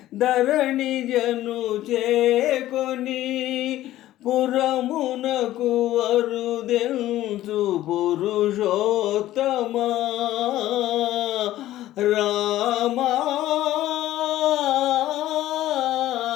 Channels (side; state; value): right; quieter; 14.4 dB